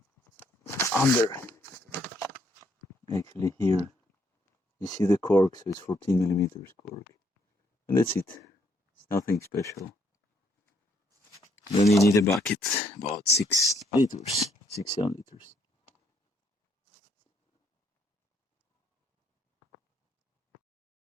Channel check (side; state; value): both; normal; correlation 0.70